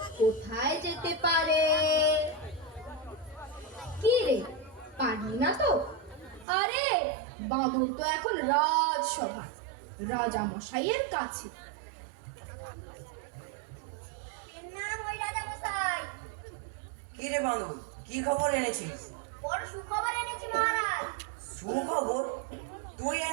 কোথায় যেতে পারে? কি রে, পারলি না তো? আরে বাঁদর তো এখন রাজসভা, রাজা মশাইয়ের কাছে। নাম ওই রাজা মশাই। কি রে বাঁদর, কি খবর এনেছিস? বড় সুখবর এনেছি মহারাজ। সুখবর? তুই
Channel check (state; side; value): drops out; left; at 6.5 s